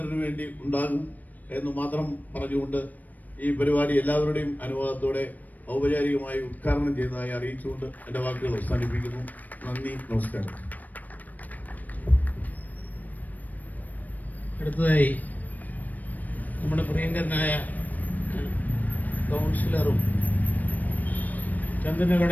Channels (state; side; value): late; right; 0.082 ms